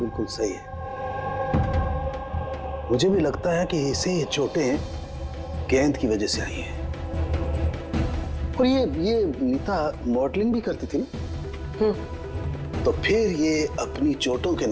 सही है। मुझे भी लगता है कि इसे ये चोटें गेंद की वजह से आई हैं। और ये नीता मॉडलिंग भी करती थी ना, तो फिर ये अपनी चोटों के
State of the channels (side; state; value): both; identical; correlation 1.00